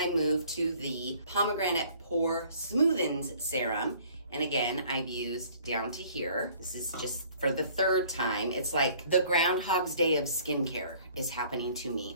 move to the Pomegranate Pore Smoothens Serum. And again, I've used down to here. This is just for the third time. It's like the Groundhog's Day of skincare is happening to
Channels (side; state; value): both; inverted; correlation -0.55